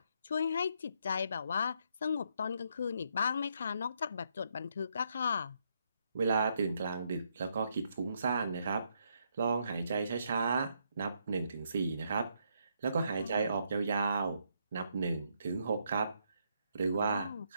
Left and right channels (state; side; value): inverted; both; correlation -0.75